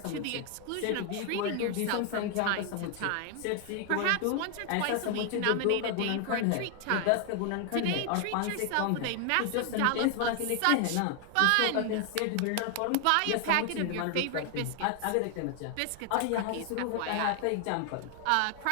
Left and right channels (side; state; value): both; different; correlation 0.00